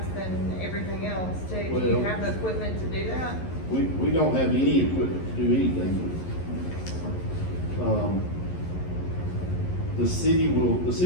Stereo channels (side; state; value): right; late; 11 ms